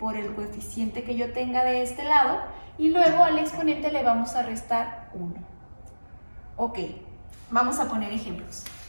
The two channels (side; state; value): both; inverted; correlation -1.00